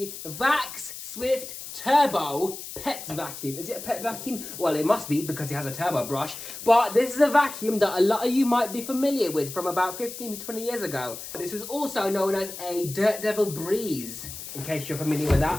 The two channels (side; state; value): left; noise; hiss, 10 dB below the sound